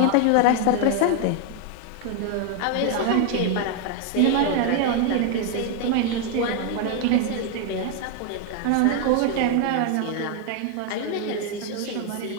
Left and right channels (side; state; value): both; different; correlation 0.01